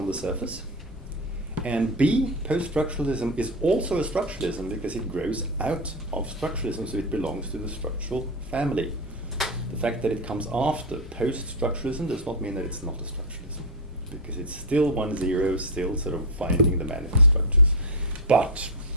the surface. And B, post-structuralism is also a structuralism because it grows out of structuralism, so it belongs to the structural family. The fact that it comes after post-structuralism does not mean that it's not a structuralism, because it's still 1-0, still sort of finding the manifest structures. But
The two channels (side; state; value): both; normal; correlation 0.08